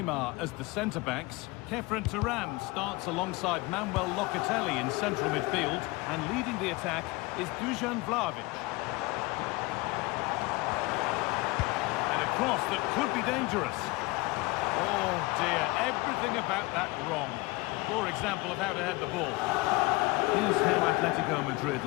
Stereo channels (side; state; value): right; quieter; 23.3 dB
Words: as the centre-backs. Kefren Turan starts alongside Manuel Locatelli in central midfield. And leading the attack is Dusan Vlahovic. And a cross that could be dangerous. Oh dear, everything about that wrong. Poor example of how to head the ball. Here's how Atletico Madrid